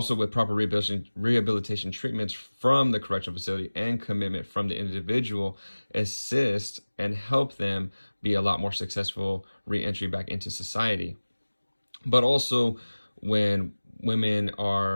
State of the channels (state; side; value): inverted; both; correlation -1.00